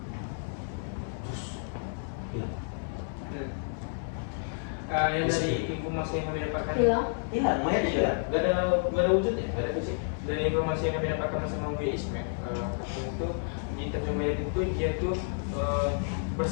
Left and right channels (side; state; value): right; silent; 58 dB below the other